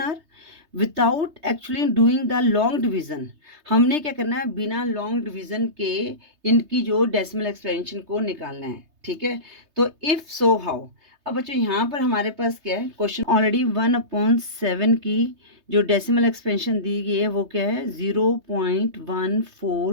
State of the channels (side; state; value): left; late; 3.3 ms